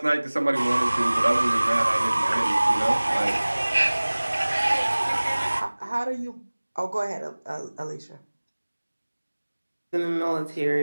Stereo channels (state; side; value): inverted; both; correlation -1.00